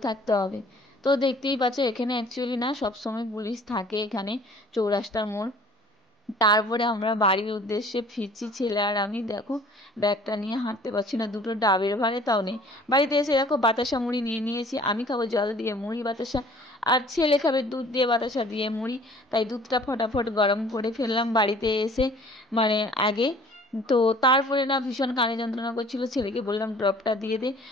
থাকতে হবে। তো দেখতেই পাচ্ছ এখানে অ্যাকচুয়ালি না সবসময় পুলিশ থাকে এখানে, চৌরাস্তার মোড়। তারপরে আমরা বাড়ির উদ্দেশ্যে ফিরছি ছেলে আর আমি, দেখো ব্যাগটা নিয়ে হাঁটতে পারছি না, দুটো ডাবের ভারে তাও নেই। বাড়িতে এসে দেখো বাতাসা মুড়ি নিয়ে নিয়েছি, আমি খাবো জল দিয়ে মুড়ি বাতাসা, আর ছেলে খাবে দুধ দিয়ে বাতাসা দিয়ে মুড়ি, তাই দুধটা ফটাফট গরম করে ফেললাম বাড়িতে এসে মানে আগে। তো তারপরে না ভীষণ কানে যন্ত্রণা করছিল, ছেলেকে বললাম ড্রপটা দিয়ে দে।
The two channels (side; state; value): both; normal; correlation 0.52